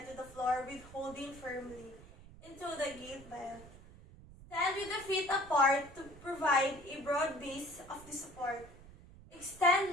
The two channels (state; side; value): noise; right; rumble, 19 dB below the sound